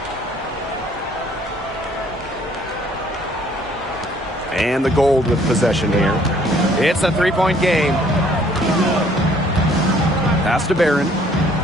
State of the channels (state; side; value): normal; both; correlation 0.60